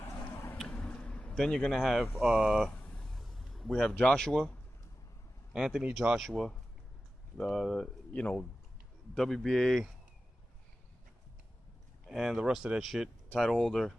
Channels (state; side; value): normal; both; correlation 0.94